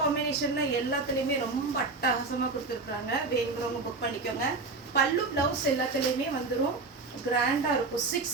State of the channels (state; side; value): quieter; left; 3.8 dB